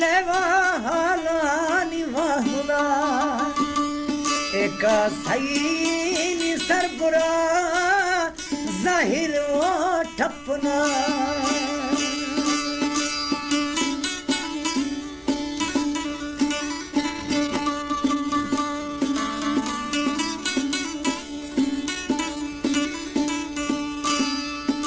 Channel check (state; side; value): identical; both; correlation 1.00